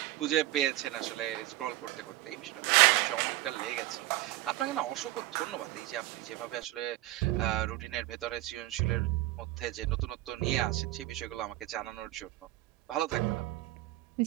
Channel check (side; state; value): left; quieter; 16.9 dB